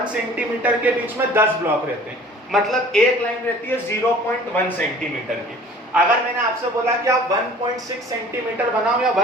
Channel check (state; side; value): normal; both; correlation 0.48